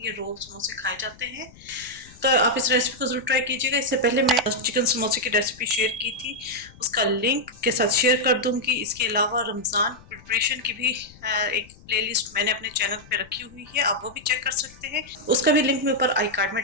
ये रोल समोसे खाए जाते हैं। तो आप इस रेसिपी को ज़रूर ट्राई कीजिएगा। इससे पहले मैं चिकन समोसे की रेसिपी शेयर की थी, उसका लिंक के साथ शेयर कर दूंगी। इसके अलावा रमज़ान प्रिपरेशन की भी एक प्लेलिस्ट मैंने अपने चैनल पे रखी हुई है, आप वो भी चेक कर सकते हैं। उसका भी लिंक मैं ऊपर आई कार्ड में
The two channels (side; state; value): left; noise; rumble, 23 dB below the sound